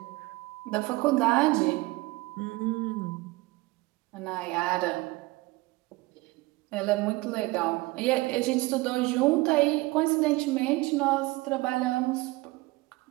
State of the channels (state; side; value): quieter; left; 21.8 dB